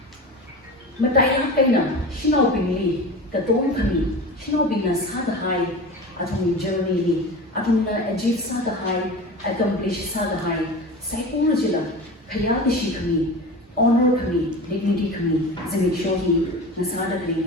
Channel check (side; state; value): both; normal; correlation 0.31